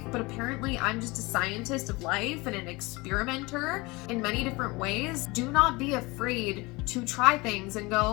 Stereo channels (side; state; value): right; quieter; 23.9 dB